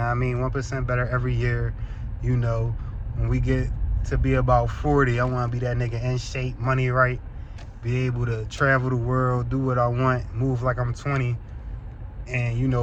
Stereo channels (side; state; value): both; identical; correlation 1.00